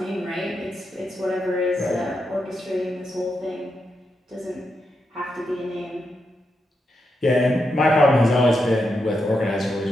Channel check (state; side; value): normal; both; correlation 0.84